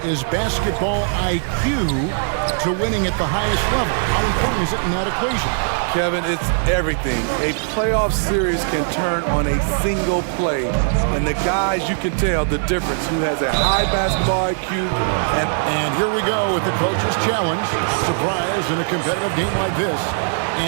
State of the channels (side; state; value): left; silent; digital silence